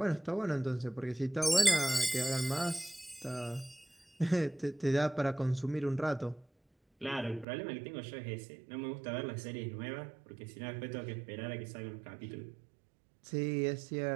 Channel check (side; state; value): left; drops out; at 7.5 s